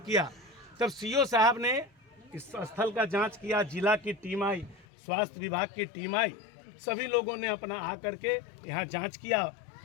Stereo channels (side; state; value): right; drops out; at 4.9 s